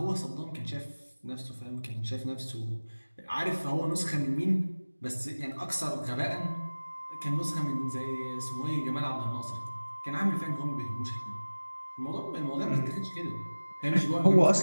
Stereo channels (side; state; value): both; inverted; correlation -1.00